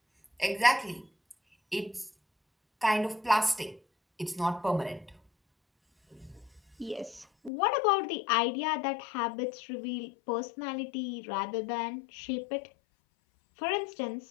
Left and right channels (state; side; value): drops out; right; at 7.5 s